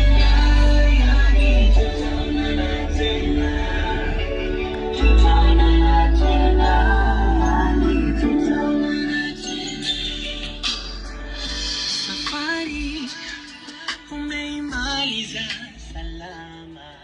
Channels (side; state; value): both; identical; correlation 1.00